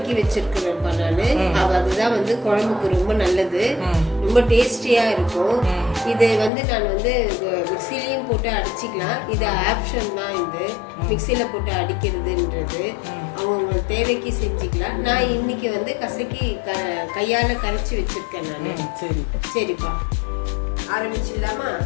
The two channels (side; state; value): right; drops out; at 6.5 s